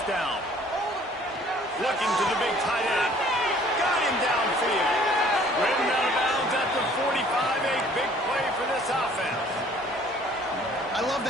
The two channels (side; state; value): both; normal; correlation 0.55